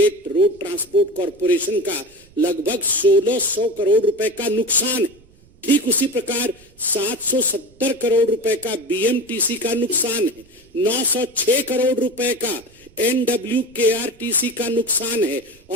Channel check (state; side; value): noise; right; rumble, 28 dB below the sound